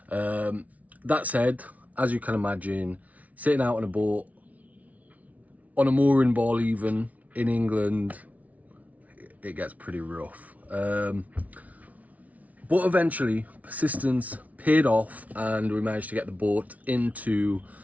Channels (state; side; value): late; left; 0.070 ms